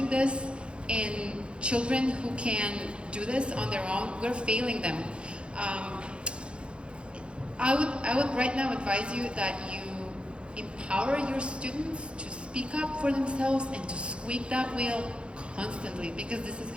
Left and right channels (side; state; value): left; late; 0.057 ms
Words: this in children who can do this on their own, we're failing them. I would right now advise you that you empower your students to speak up for themselves and to squeak that wheel constantly, because this is